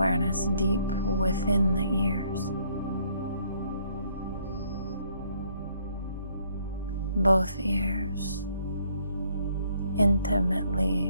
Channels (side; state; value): both; inverted; correlation -0.66